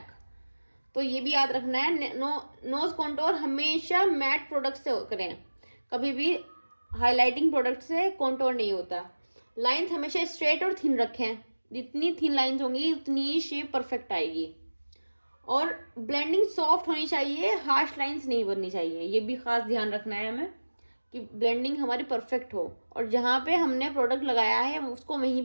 तो ये भी याद रखना है, नोज कॉन्टोर हमेशा मैट प्रोडक्ट से करें, कभी भी हाईलाइटिंग प्रोडक्ट से कॉन्टोर नहीं होता। लाइंस हमेशा स्ट्रेट और थिन रखें, जितनी थिन लाइंस होंगी उतनी ही शेप परफेक्ट आएगी। और ब्लेंडिंग सॉफ्ट होनी चाहिए, हार्श लाइंस नहीं बननी चाहिए, ये भी खास ध्यान रखना है हमें कि ब्लेंडिंग हमारी परफेक्ट हो, और जहाँ पे हमने प्रोडक्ट लगाया है उसको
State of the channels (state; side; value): inverted; both; correlation -1.00